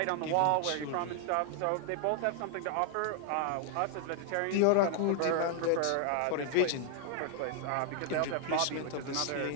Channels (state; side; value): different; both; correlation 0.00